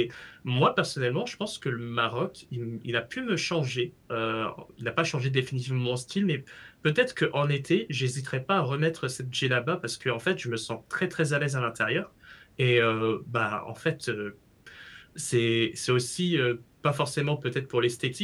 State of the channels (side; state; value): both; identical; correlation 1.00